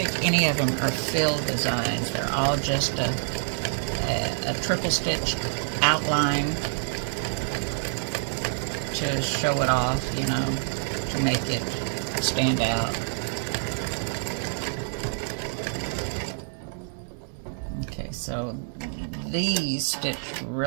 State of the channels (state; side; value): silent; left; digital silence